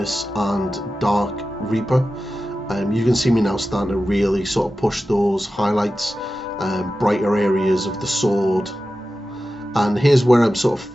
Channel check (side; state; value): both; normal; correlation 0.93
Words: and Dark Reaper. You can see me now starting to really sort of push those highlights, brighter areas of the sword. And here's where I'm sort of